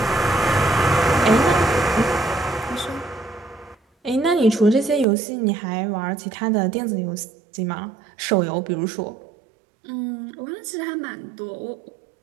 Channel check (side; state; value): left; drops out; at 5.1 s